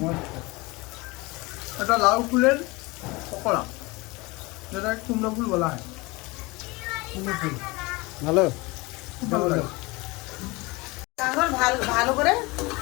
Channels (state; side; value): quieter; right; 24.2 dB